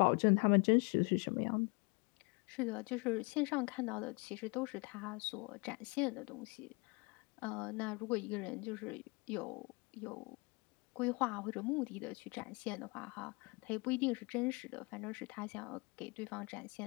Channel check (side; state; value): right; quieter; 29.2 dB